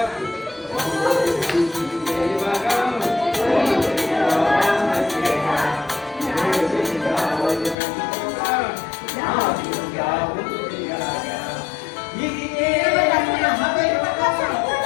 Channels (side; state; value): right; drops out; at 7.8 s